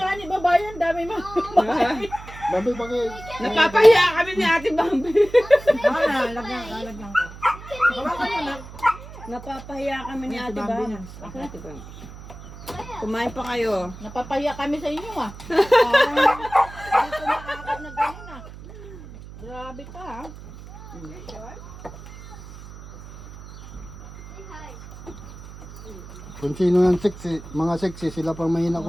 ni babayan, dami mo. Bambi, bakit? Napapahiya kami ni Ate Bambi. Lagyan ko. Napapahiya kami ni Ate Bambi. Ate Bambi. Kumain pa kayo. Napapahiya kami sa inyo Hindi ko makakap na gano'n Grabe ka Kung sino yung sexy, mga sexy, sila pang mahina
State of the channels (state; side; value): noise; right; hum, 15 dB below the sound